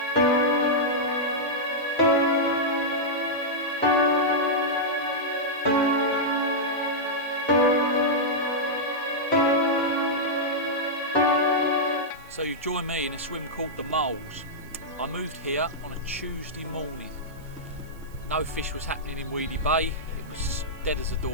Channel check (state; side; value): noise; right; hiss, 27 dB below the sound